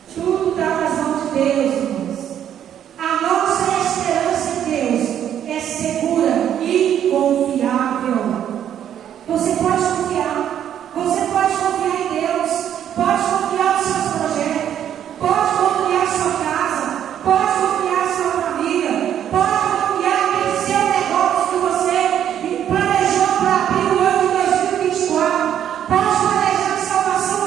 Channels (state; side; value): quieter; left; 9.9 dB